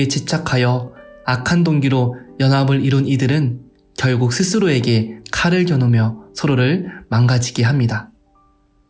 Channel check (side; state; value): both; identical; correlation 1.00